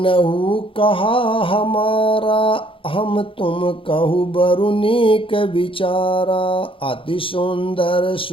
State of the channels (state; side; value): late; right; 0.26 ms